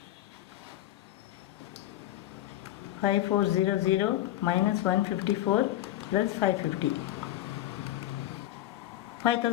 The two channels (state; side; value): quieter; right; 14.1 dB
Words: 5400 minus 154 plus 550.